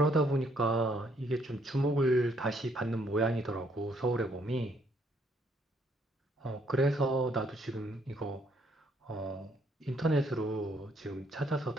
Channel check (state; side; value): normal; both; correlation 0.69